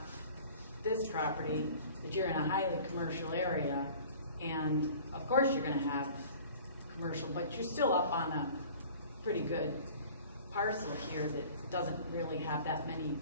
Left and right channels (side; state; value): both; inverted; correlation -0.46